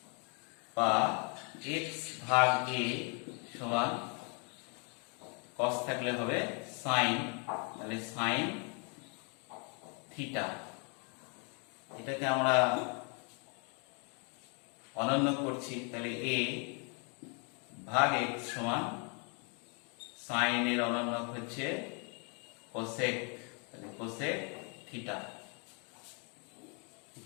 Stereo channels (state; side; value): quieter; right; 36.4 dB